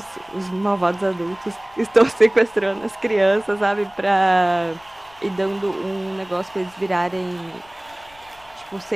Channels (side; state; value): left; noise; rumble, 28 dB below the sound